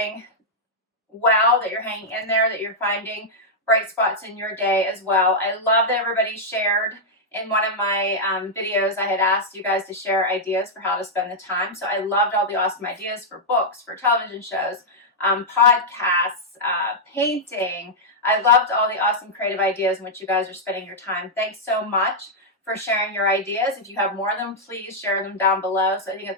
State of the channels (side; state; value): both; normal; correlation -0.06